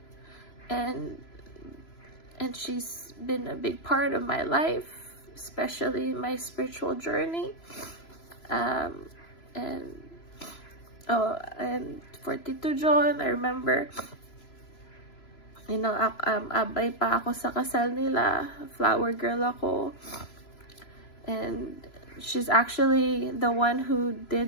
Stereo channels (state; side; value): late; right; 3.0 ms